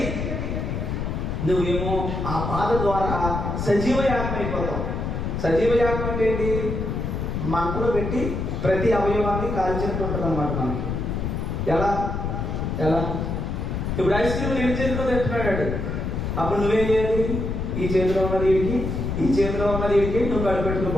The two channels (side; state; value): left; noise; rumble, 3 dB below the sound